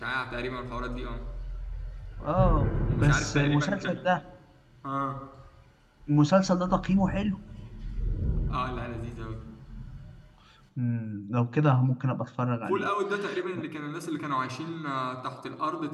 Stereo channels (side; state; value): both; identical; correlation 1.00